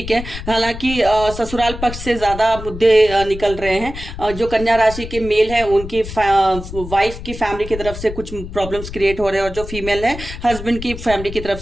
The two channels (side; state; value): left; noise; rumble, 10 dB below the sound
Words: है, हालांकि ससुराल पक्ष से ज्यादा मुद्दे निकल रहे हैं। जो कन्या राशि के मेल है उनकी वाइफ की फैमिली की तरफ से कुछ प्रॉब्लम्स क्रिएट हो रहे हैं और जो फीमेल है हस्बैंड की फैमिली की तरफ